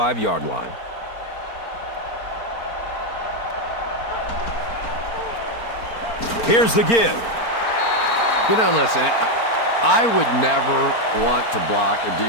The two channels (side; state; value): right; late; 4.4 ms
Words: line. Here's the give. You know, listen, I would never want to block a